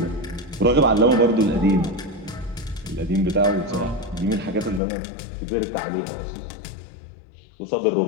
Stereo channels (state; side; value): drops out; right; at 4.8 s